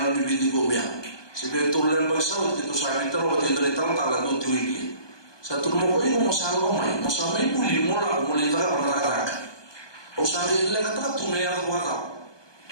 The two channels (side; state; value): right; late; 1.2 ms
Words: di pinggir gobiang. Sebab itu lain bersawat itu saya minta lo waktu itu datang talan tu tuiki. Satu rumah kau ini mau samai buli mula tak ada. Usahai lagi tak tu mea tu kata.